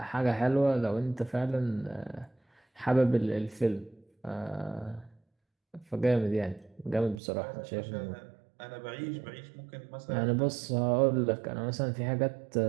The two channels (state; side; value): drops out; left; at 7.2 s